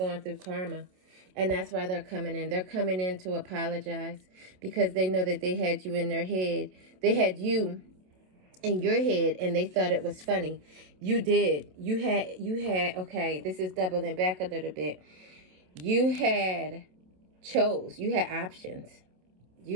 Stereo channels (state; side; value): late; left; 27 ms